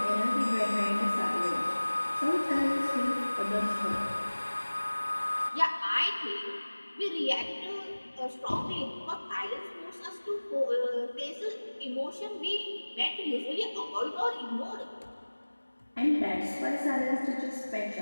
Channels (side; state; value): both; inverted; correlation -1.00